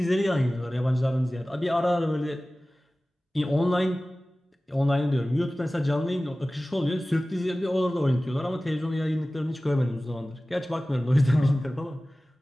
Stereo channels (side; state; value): both; normal; correlation 0.97